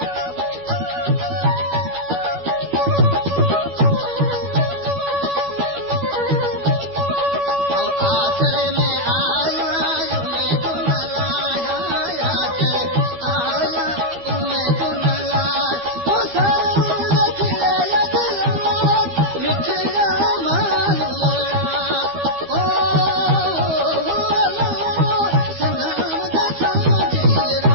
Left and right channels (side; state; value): left; late; 12 ms